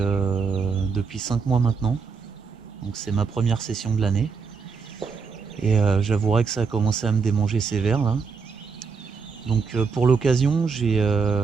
5 mois maintenant. Donc c'est ma première session de l'année. Et j'avouerai que ça a commencé à me démanger sévère là. Donc pour l'occasion,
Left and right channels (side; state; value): left; quieter; 5.3 dB